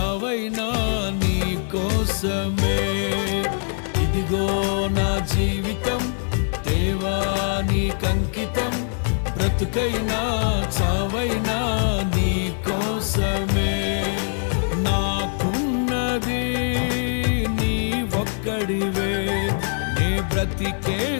నీ కోసమే. ఇదిగో నా జీవితం దేవా నీకంకితం, బ్రతుకైనా చావైనా నీ కోసమే. నాకున్నది నీ ఒక్కడివే, నీ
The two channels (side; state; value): right; silent; digital silence